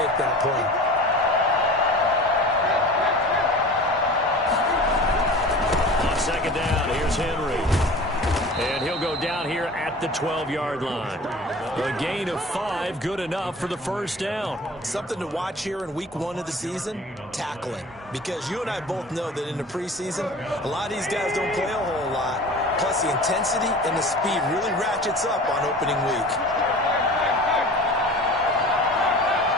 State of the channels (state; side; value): normal; both; correlation 0.39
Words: that play. Second down, here's Henry. And he'll go down here at the 12-yard line. A gain of 5, good enough for the first down. Something to watch here in week 1 of the season, tackling. Because you and I both know that in the preseason, a lot of these guys don't play a whole lot. Plus, the intensity and the speed really ratchets up on opening week.